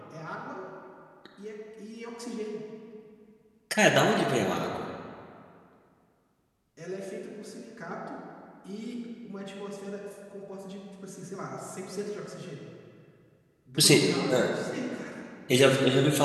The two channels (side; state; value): both; identical; correlation 1.00